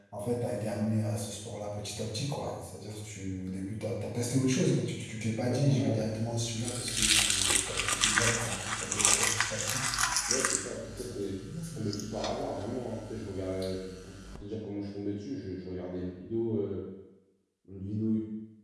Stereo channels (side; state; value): both; identical; correlation 1.00